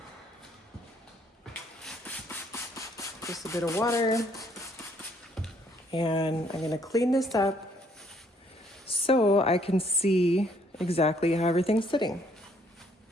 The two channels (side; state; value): both; normal; correlation 0.66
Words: Just a bit of water. And I'm going to clean this up so I can see exactly how everything's sitting.